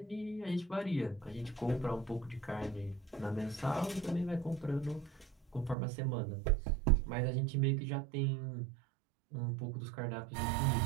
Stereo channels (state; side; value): drops out; left; at 5.8 s